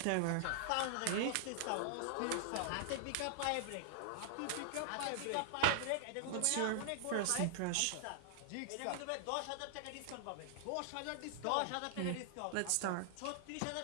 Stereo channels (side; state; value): both; different; correlation -0.01